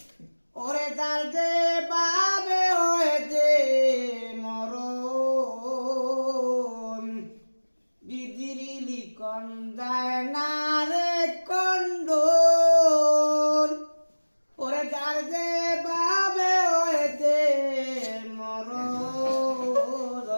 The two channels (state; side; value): inverted; both; correlation -1.00